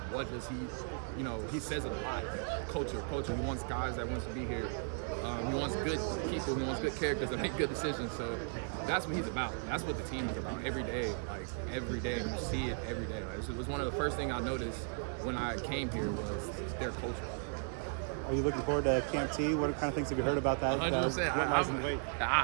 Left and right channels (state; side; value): silent; left; 54 dB below the other